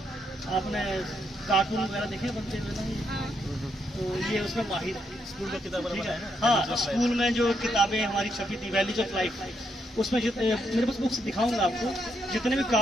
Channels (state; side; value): normal; both; correlation 0.77